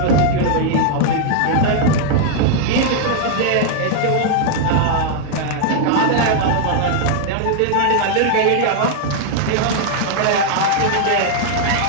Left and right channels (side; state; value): both; different; correlation 0.00